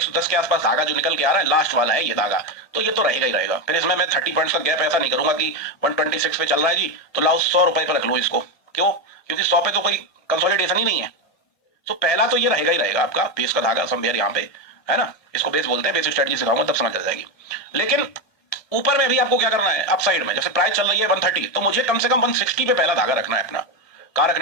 के आसपास धागा जो निकल के आ रहा है, लास्ट वाला है ये धागा, तो ये तो रहेगा ही रहेगा। फिर इसमें मैं 30 पॉइंट्स का गैप ऐसा नहीं करूंगा कि 126 पे चल रहा है जी, तो लाओ 100 रुपए पर रख लो इसको। क्यों? क्योंकि 100 पे तो कोई कंसोलिडेशन ही नहीं है। तो पहला तो ये रहेगा ही रहेगा आपका बेस का धागा समवेयर यहाँ पे, है ना। इसको बेस बोलते हैं, बेस स्ट्रेटजी सिखाऊंगा तब समझ आ जाएगी। लेकिन ऊपर में भी आपको क्या करना है? अप साइड में जैसे प्राइस चल रही है 130, तो मुझे कम से कम 160 पे पहला धागा रखना है अपना। कहां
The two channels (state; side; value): late; right; 1.9 ms